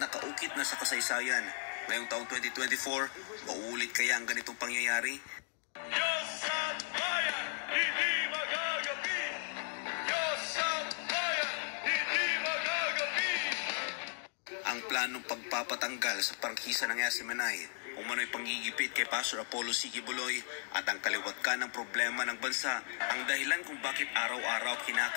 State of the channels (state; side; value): silent; right; 54 dB below the other